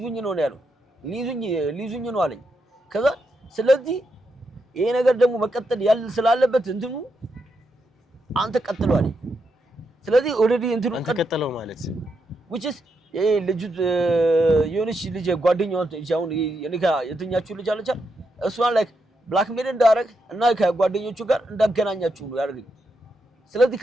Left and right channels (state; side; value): normal; both; correlation 0.82